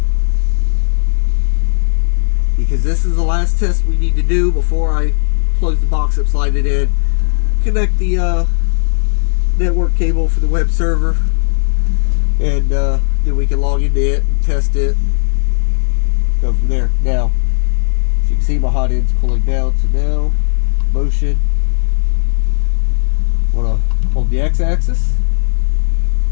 Because this is the last test we need to do before I close the box up, slide it in, connect the network cable for the web server, and then we can log into it and test it. Go from there. Now, as you can see, my hot end's cooling down, so now, motion. I want to hold the x-axis.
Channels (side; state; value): right; silent; digital silence